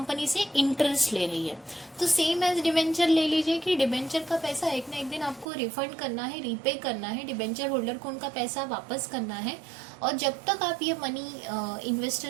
से इंटरेस्ट ले रही है। तो सेम एज डिबेंचर ले लीजिए कि डिबेंचर का पैसा एक ना एक दिन आपको रिफंड करना है, रीपे करना है, डिबेंचर होल्डर को उनका पैसा वापस करना है। और जब तक आप ये मनी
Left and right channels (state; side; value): drops out; left; at 5.5 s